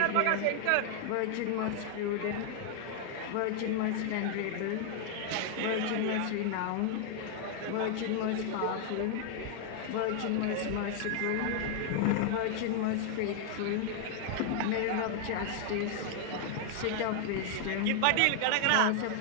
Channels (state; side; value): different; both; correlation 0.00